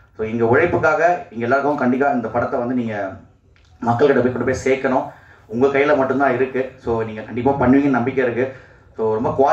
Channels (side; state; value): both; identical; correlation 1.00